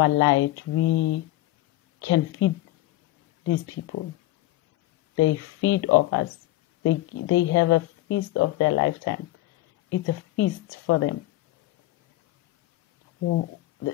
light, we can feed these people. They feed off us. They have a feast of their lifetime. It's a feast for them.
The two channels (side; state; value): right; quieter; 16.6 dB